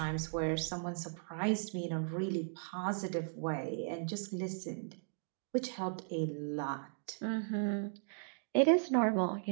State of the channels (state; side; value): silent; left; digital silence